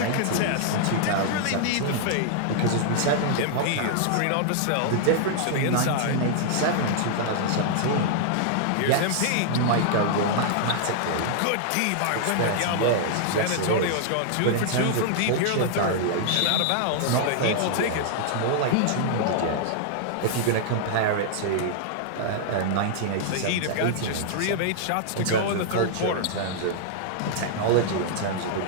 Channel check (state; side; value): different; both; correlation -0.01